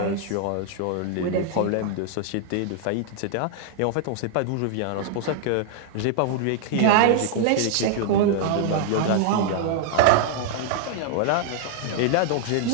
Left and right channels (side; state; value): both; different; correlation 0.00